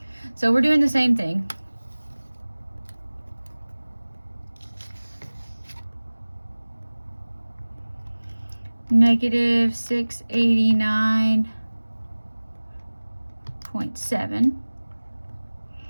So we're doing the same thing. Negative 689.7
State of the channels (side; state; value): both; inverted; correlation -1.00